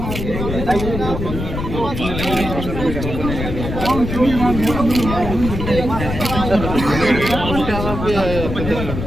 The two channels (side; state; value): left; noise; rumble, 5 dB below the sound